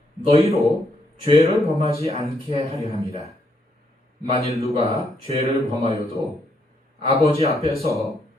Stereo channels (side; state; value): both; normal; correlation 0.75